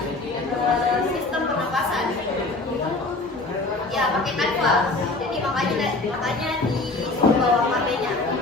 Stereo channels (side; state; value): right; quieter; 3.2 dB